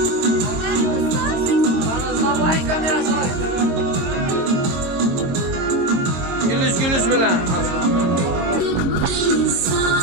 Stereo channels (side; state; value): left; late; 22 ms